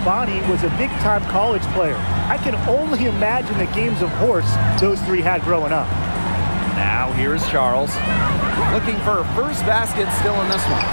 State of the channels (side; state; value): both; inverted; correlation -1.00